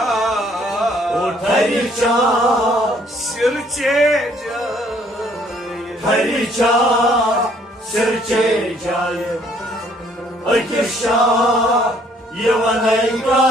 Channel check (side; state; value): both; normal; correlation 0.63